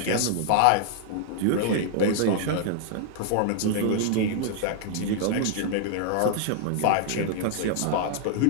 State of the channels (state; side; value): different; both; correlation -0.01